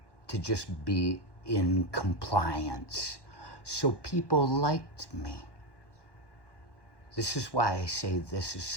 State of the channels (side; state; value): right; late; 1.1 ms